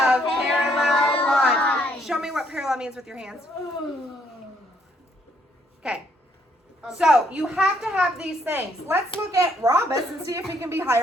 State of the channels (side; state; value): both; normal; correlation 0.69